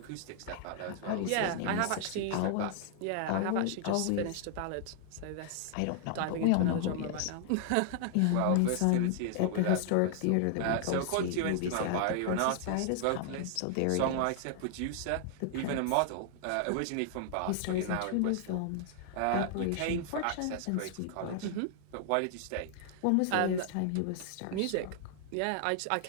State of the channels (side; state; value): both; different; correlation 0.00